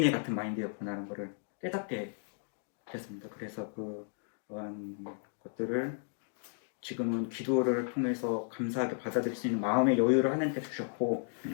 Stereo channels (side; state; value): right; silent; digital silence